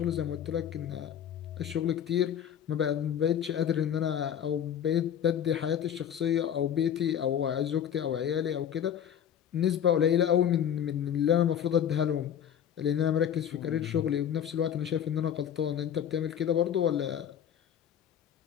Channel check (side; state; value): right; quieter; 9.3 dB